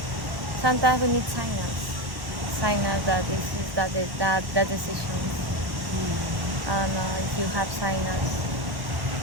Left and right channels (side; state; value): left; late; 1.1 ms